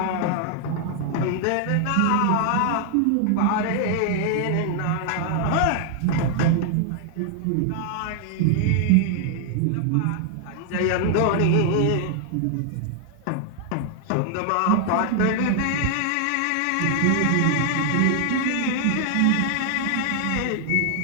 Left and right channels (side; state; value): both; different; correlation 0.00